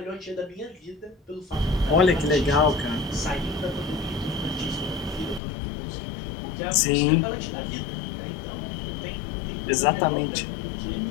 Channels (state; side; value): drops out; right; at 5.4 s